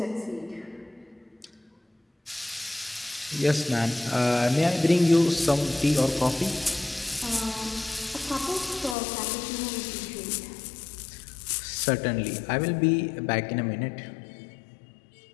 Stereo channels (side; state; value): right; drops out; at 9.0 s